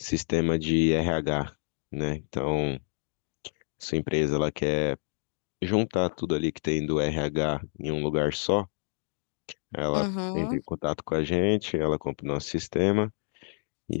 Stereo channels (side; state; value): right; silent; digital silence